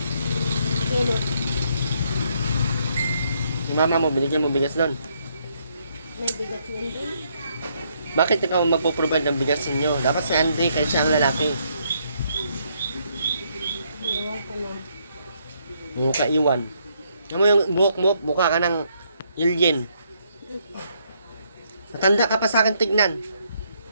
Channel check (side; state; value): both; inverted; correlation -0.73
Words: Kilo. Si mama mo, binigyan mo bigas doon. May bigas yan din. Bakit ikaw magpo-provide ng bigas ninyo? Dapat si Andre, kasi siya ang lalaki. Ewan ko nun. Yung kaiwan. Alam mo yung buhok mo, mukha ka ng alien. Matanda ka pa sa akin tignan.